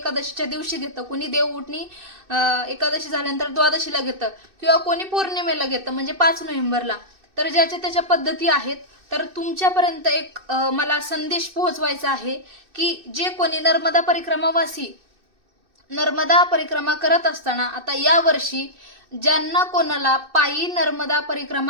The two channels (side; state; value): left; late; 2.6 ms